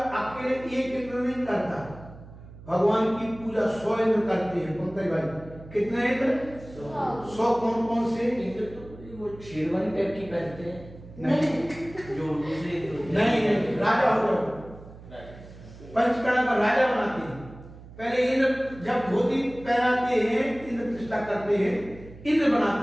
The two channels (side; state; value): right; noise; hum, 18 dB below the sound